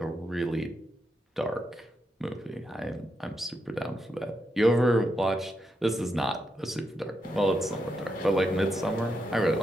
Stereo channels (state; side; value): normal; both; correlation 0.83